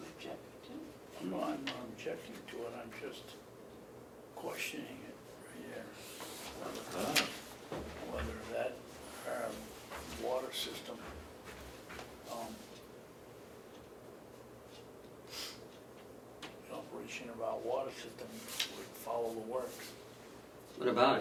object to? I'm not objecting to it, I'm just questioning it right here. Whether that water system, the operation of our water system would follow the works. What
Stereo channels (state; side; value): identical; both; correlation 1.00